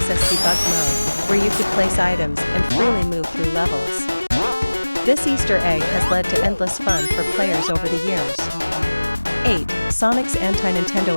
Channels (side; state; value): both; inverted; correlation -1.00